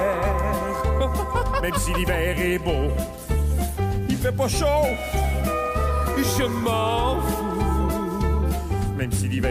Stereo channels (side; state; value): both; identical; correlation 1.00